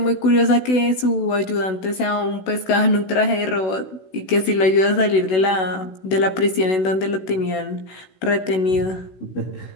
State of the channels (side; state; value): right; late; 16 ms